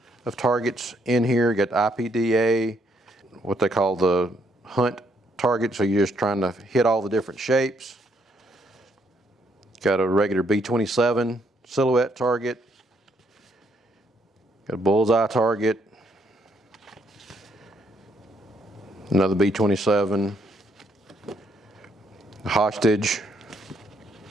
of targets in here. You got the IPDA, what they call the hunt target, so you're just trying to hit all the different shapes. Got a regular B27 silhouette target, got a bullseye target, another B27, hostage,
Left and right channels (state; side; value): normal; both; correlation 0.72